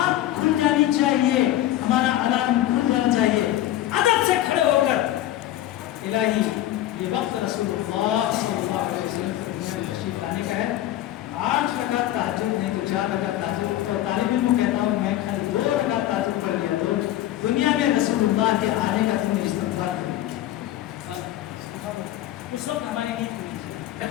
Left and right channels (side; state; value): right; quieter; 13.7 dB